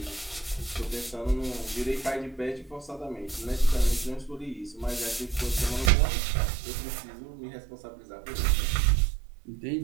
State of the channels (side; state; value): left; drops out; at 5.9 s